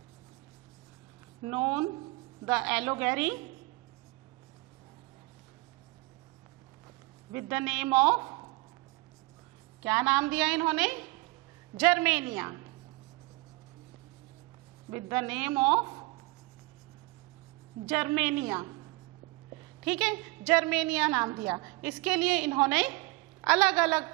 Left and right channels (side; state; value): left; quieter; 24.5 dB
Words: known the Allegory with the name of, क्या नाम दिया इन्होंने, Germania, with the name of Germania, ठीक है, जर्मेनिया नाम दिया। इसके लिए इन्होंने अलग